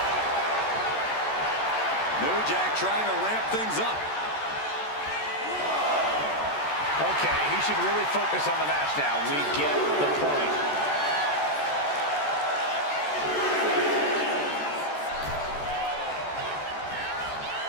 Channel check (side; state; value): right; late; 14 ms